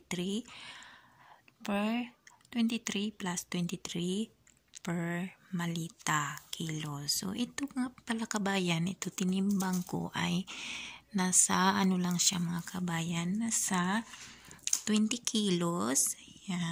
plus 23 per malita kilo. So ito nga pala kabayan, ito tinimbang ko ay nasa ano lang siya mga kabayan, nasa 20 kilos.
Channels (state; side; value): identical; both; correlation 1.00